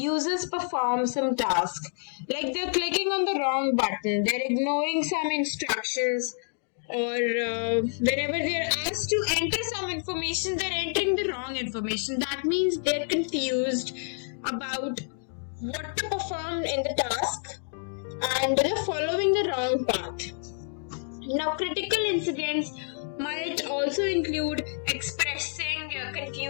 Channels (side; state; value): right; silent; 59 dB below the other